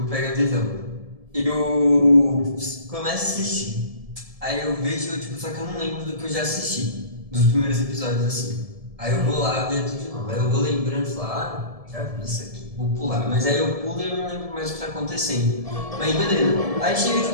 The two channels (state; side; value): late; left; 1.7 ms